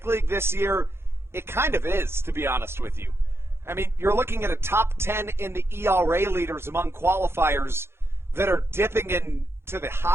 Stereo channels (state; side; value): late; left; 0.12 ms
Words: League this year, it kind of is, to be honest with you. I mean, you're looking at a top 10 in the ERA leaders among qualifiers that are dipping into the